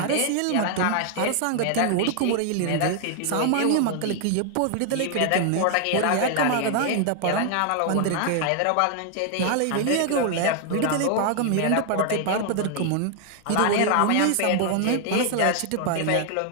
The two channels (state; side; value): different; both; correlation 0.00